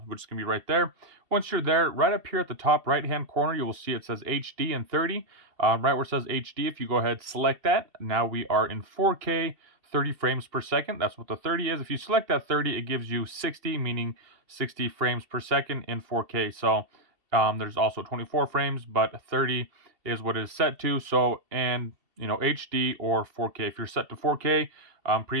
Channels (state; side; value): late; left; 2.7 ms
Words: which is going to be right there. Once you're there, right up here at the top right hand corner, you will see it says HD and 30. Right where it says HD, if you go ahead, select that. Now we are in 4K, 30 frames per second. That's what the 30 is. If you select that 30, it gives you 60, meaning 60 frames per second in 4K. So there's also 24 frames, but 30 is what it is set to. So, and you know, HD or 4K. If you're set to 4K,